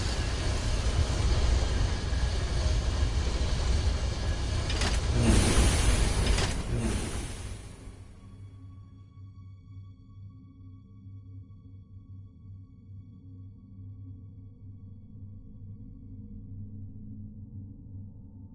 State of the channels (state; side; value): identical; both; correlation 1.00